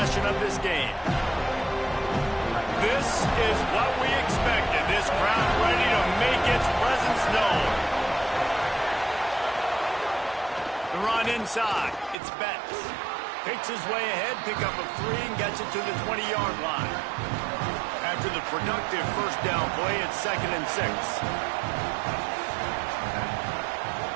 of this game. This is what we expected. This crowd ready to make its presence known. The run inside. It's Betts. Picks his way ahead, pick up a 3, and gets it to the 20-yard line. After the productive first down play, it's 2nd and 6.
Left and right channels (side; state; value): left; drops out; at 12.2 s